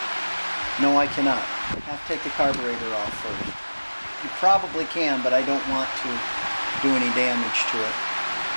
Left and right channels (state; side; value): inverted; both; correlation -1.00